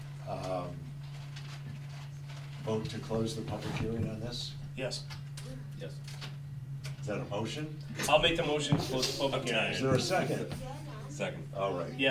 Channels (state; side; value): identical; both; correlation 1.00